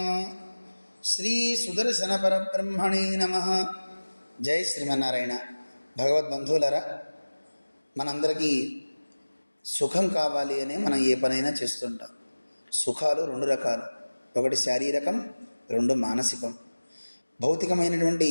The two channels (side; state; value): both; inverted; correlation -1.00